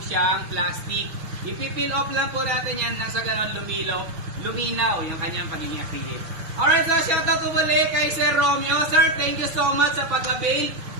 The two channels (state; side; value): late; left; 6.2 ms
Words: plastic. Ipipil off lang po natin yan nang sa ganon luminaw yung kanyang pagiging active. Alright, so shoutout po muli kay Sir Romeo. Sir, thank you so much sa pag-avail